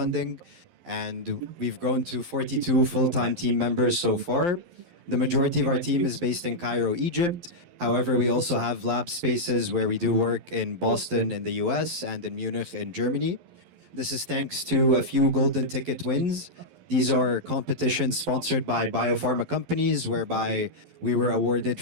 and we've grown to 42 full-time team members so far. The majority of our team is based in Cairo, Egypt. However, we also have lab spaces where we do work in Boston in the US and in Munich in Germany. This is thanks to a few golden ticket wins. These are competitions sponsored by biopharma companies whereby we were awarded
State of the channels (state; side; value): late; left; 11 ms